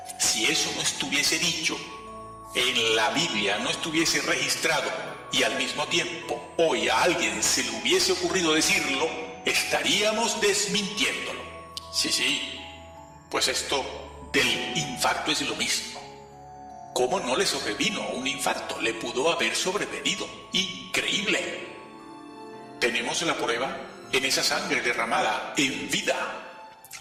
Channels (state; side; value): identical; both; correlation 1.00